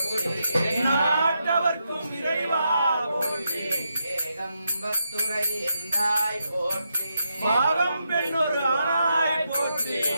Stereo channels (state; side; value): inverted; both; correlation -0.82